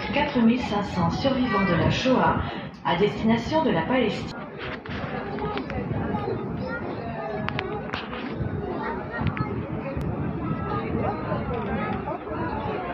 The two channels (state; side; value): identical; both; correlation 1.00